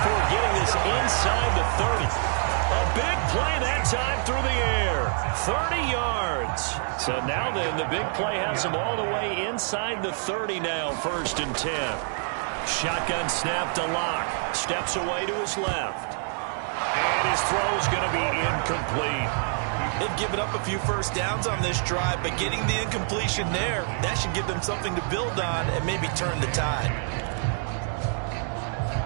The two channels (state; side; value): silent; left; 61 dB below the other